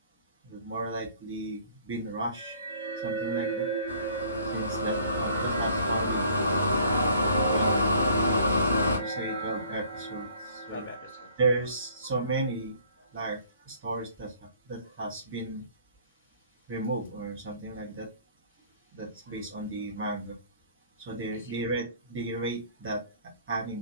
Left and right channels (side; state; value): both; inverted; correlation -0.55